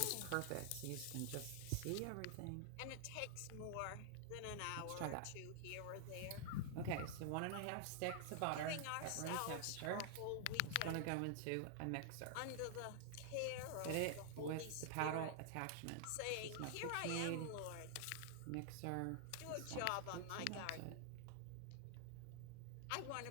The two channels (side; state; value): both; different; correlation 0.00